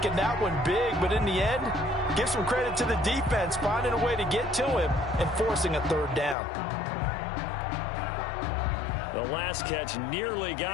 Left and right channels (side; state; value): right; drops out; at 6.4 s